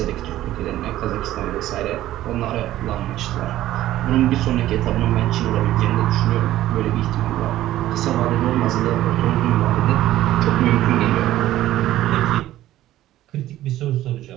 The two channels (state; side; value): quieter; left; 14.2 dB